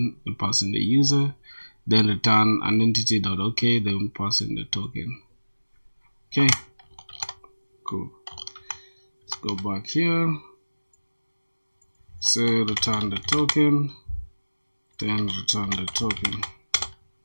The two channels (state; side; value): inverted; both; correlation -1.00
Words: and pass in the user, then return identity dot okay, then pass in the token. Okay, cool. Let's go back here. Say return the token, then return the token.